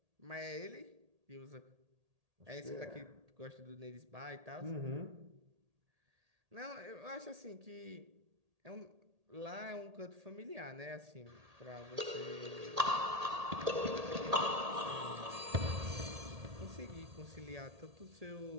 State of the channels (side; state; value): left; late; 1.8 ms